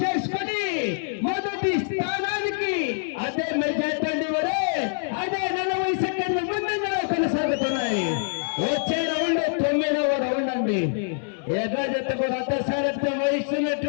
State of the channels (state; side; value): silent; right; digital silence